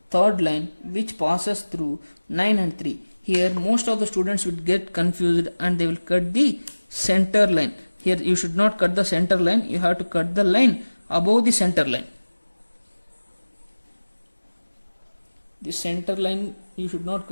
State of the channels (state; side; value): inverted; both; correlation -1.00